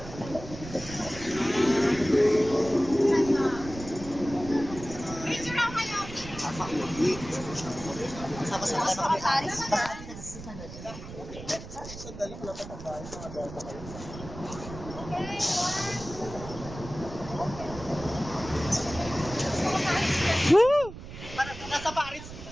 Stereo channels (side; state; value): right; noise; rumble, 12 dB below the sound